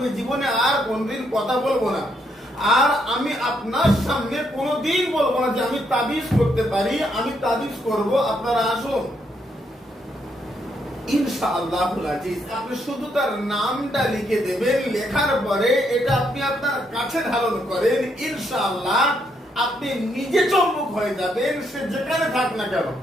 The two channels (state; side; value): normal; both; correlation 0.75